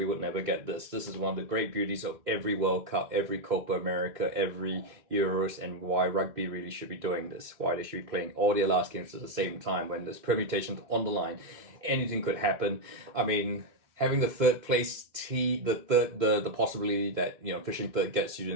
would never get this. This is one of the great beauties of every World Cup, every Copa America, every Euros, and why rugby really should be doing this. Why they should be playing all their last games at the same time when there's permutations on the line. Anything could happen. I mean, having the third place the possibility that finishing third gets you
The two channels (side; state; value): left; late; 2.1 ms